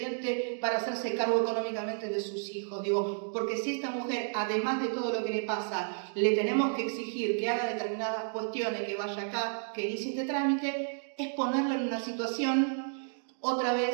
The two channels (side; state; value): left; silent; digital silence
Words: para hacerse cargo económicamente de sus hijos. Digo, porque si esta mujer, además de todo lo que le pasa, le tenemos que exigir que haga determinadas cuestiones, que vaya acá, que inicie este trámite, es ponerla en una situación, otra vez,